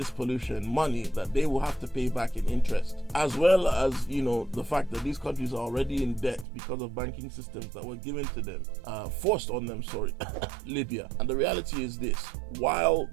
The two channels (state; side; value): drops out; left; at 6.5 s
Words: pollution money that they will have to pay back in interest, as well as, you know, the fact that these countries are already in debt because of banking systems that were given to them, forced on them, Libya. And the reality is this: while